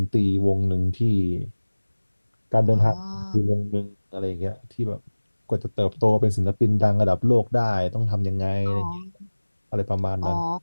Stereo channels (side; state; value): both; inverted; correlation -1.00